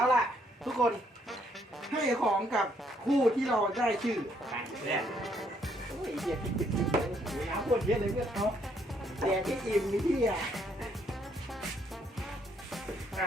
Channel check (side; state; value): both; normal; correlation 0.70